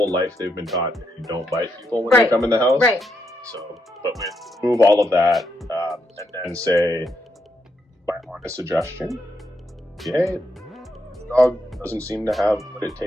life they've been taught you don't bite people when they come in the house. Right. So, but we remove all of that and then say, my honest suggestion, the dog doesn't seem to have what it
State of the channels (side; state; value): both; normal; correlation 0.80